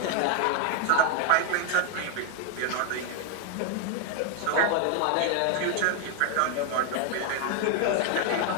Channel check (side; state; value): both; different; correlation 0.00